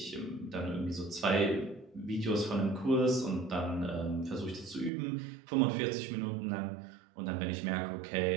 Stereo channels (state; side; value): drops out; left; at 4.9 s